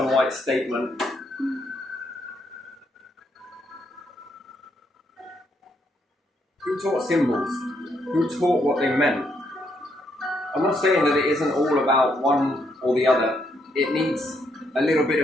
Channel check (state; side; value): normal; both; correlation 0.75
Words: white statement. Who taught symbols? Who taught what they meant? I'm not saying that it isn't all about one or the other. It needs a little bit